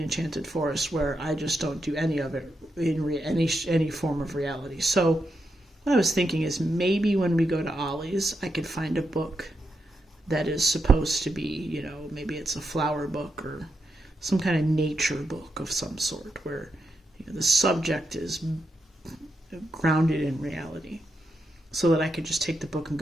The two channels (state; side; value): normal; both; correlation 0.84